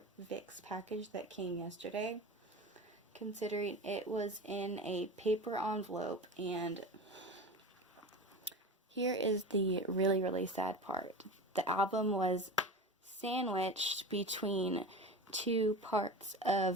VIXX package that came yesterday, considering it was in a paper envelope. And here is the really, really sad part. The album was sandwiched between two parts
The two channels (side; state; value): both; normal; correlation 0.30